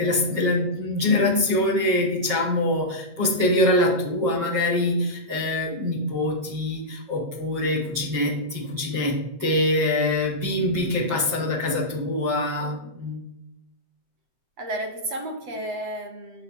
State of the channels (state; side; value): late; left; 7.4 ms